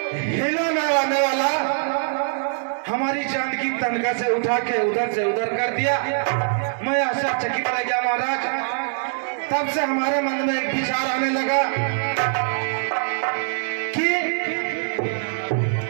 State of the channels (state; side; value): silent; left; digital silence